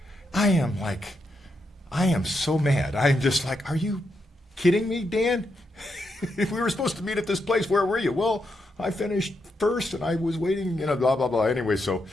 I am so mad. I'm just like, are you kidding me, Dan? If we were supposed to meet at this place, where were you? Well, I finished first, and I was waiting, blah, blah, blah. Anyway, so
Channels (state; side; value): normal; both; correlation 0.82